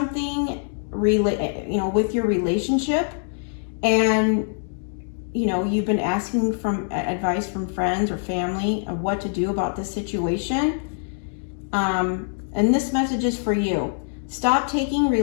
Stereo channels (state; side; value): silent; right; digital silence